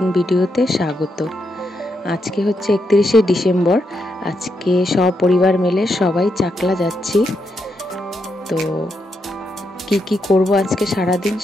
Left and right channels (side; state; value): both; normal; correlation 0.82